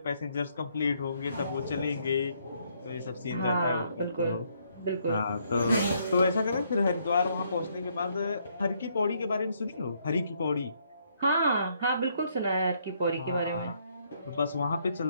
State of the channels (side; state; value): both; inverted; correlation -0.71